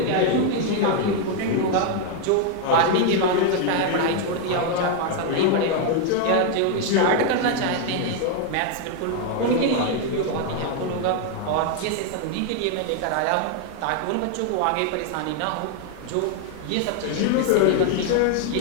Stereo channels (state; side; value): different; both; correlation 0.00